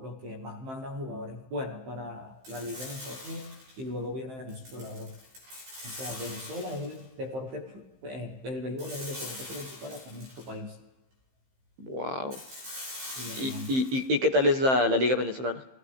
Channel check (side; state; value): left; late; 15 ms